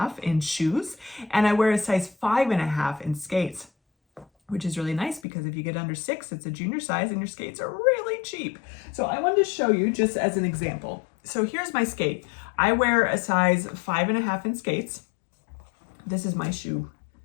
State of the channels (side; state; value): right; drops out; at 5.2 s